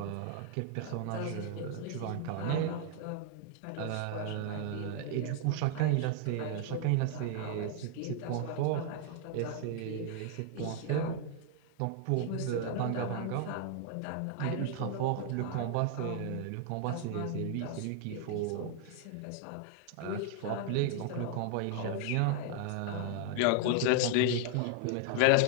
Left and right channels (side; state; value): both; different; correlation 0.00